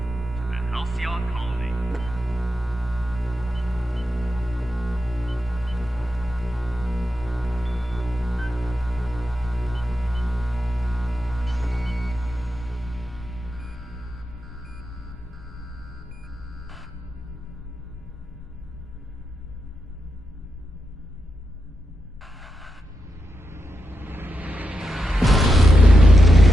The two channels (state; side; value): normal; both; correlation 0.87